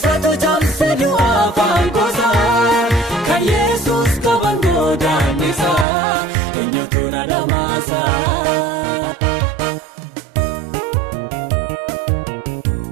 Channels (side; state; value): left; drops out; at 5.9 s